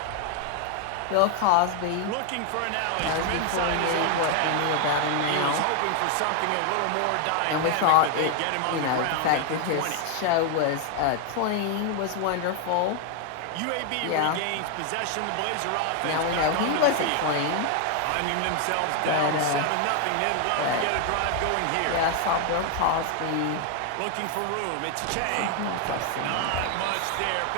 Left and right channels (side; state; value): both; different; correlation 0.00